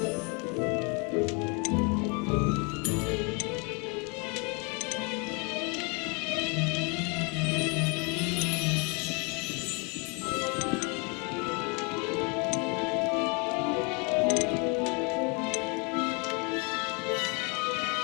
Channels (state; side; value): quieter; right; 32.6 dB